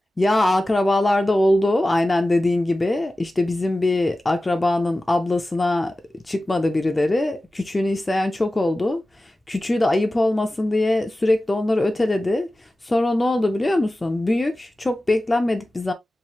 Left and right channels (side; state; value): both; normal; correlation 0.95